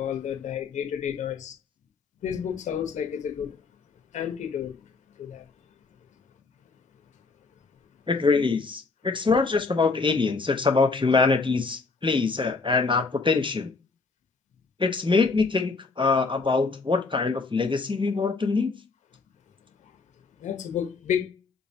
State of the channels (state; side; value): quieter; right; 4.2 dB